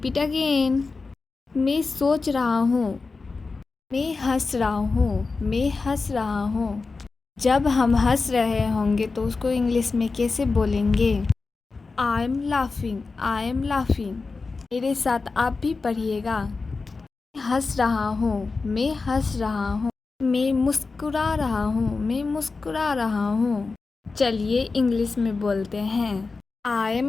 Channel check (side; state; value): right; quieter; 4.1 dB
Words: again. मैं सोच रहा हूँ, मैं हंस रहा हूँ, मैं हंस रहा हूँ। जब हम हंस रहे होंगे तो उसको इंग्लिश में कैसे बोलेंगे? I am laughing, I am laughing. मेरे साथ आप भी पढ़िएगा। मैं हंस रहा हूँ, मैं हंस रहा हूँ। मैं मुस्कुरा रहा हूँ, मैं मुस्कुरा रहा हूँ। चलिए इंग्लिश में बोलते हैं। I